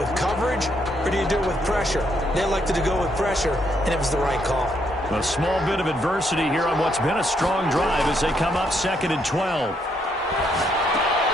coverage, or do you do it with pressure? They elected to go with pressure, and it was the right call. A small bit of adversity here on what's been a strong drive as they come up 2nd and 12.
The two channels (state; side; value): normal; both; correlation 0.74